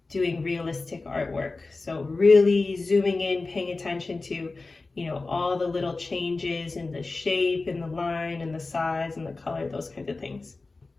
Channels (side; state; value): right; quieter; 3.6 dB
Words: doing realistic artwork. So really zooming in, paying attention to, all the little changes in the shape and the line and the size and the color, those kinds of things.